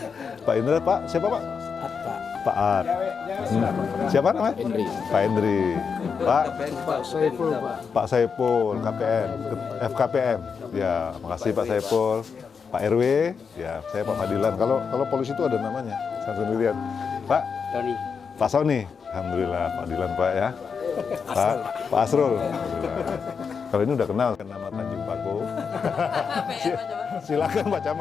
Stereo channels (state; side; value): quieter; right; 6.0 dB